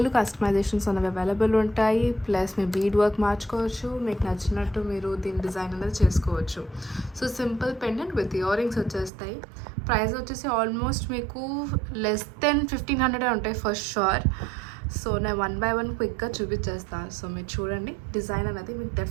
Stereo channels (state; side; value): drops out; left; at 9.1 s